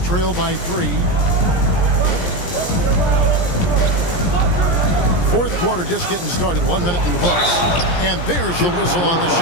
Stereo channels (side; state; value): right; late; 17 ms